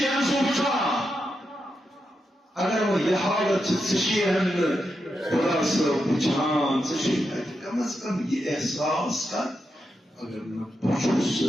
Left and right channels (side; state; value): both; normal; correlation 0.86